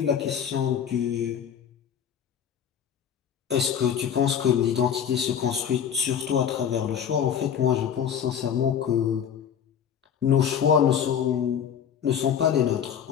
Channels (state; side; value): quieter; right; 8.4 dB